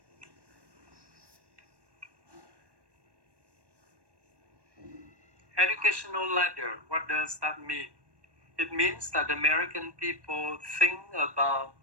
Educational ladder, what does that mean? It means that American people think about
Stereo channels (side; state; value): left; late; 1.1 ms